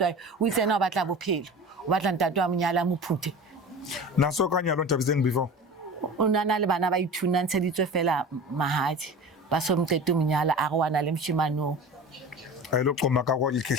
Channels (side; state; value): both; normal; correlation 0.35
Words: o itse yena o batla bophelo o batla ntate wa monyala mo phute na so ka nyalo Thabiseng before o nana le bana ba ithuna ntsheditswe fela mahadi ba so mtete monyala a re wana le mshimano a ile qoma ka go